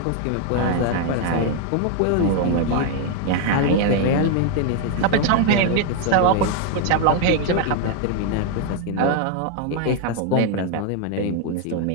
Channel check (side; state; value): both; different; correlation 0.01